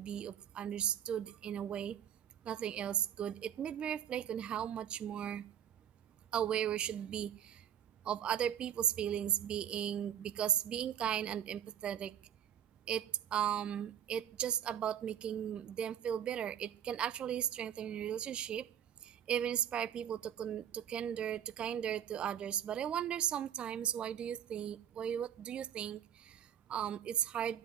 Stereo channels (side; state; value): left; quieter; 9.5 dB